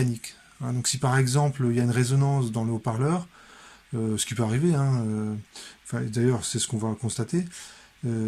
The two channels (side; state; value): both; identical; correlation 1.00